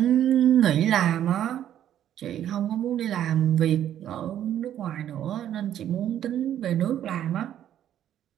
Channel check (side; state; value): left; quieter; 10.9 dB